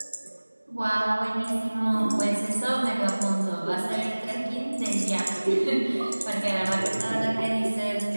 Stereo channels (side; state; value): both; inverted; correlation -1.00